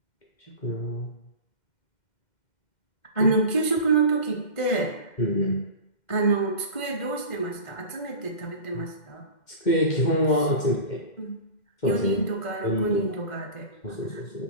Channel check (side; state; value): right; late; 2.1 ms